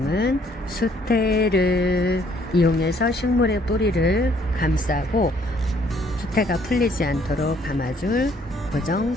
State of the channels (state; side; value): normal; both; correlation 0.64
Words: 수태를 이용해서 식물의 뿌리를 감싸고 수태가 풀리지 않도록 감아줄 고정